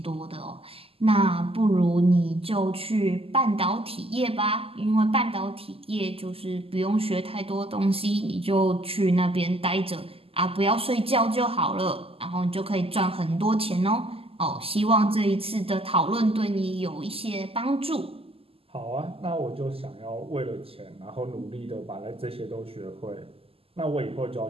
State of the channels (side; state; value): left; late; 0.28 ms